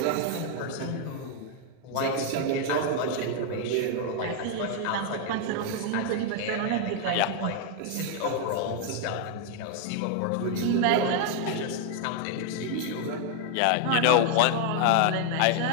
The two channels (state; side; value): different; both; correlation 0.00